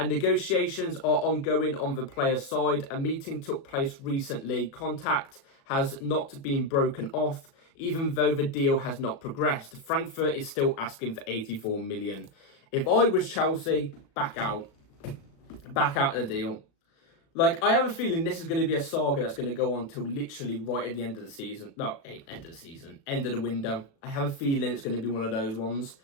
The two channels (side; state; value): right; late; 36 ms